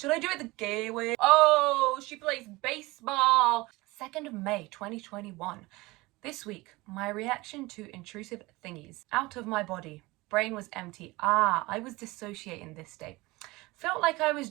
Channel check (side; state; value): left; quieter; 21.7 dB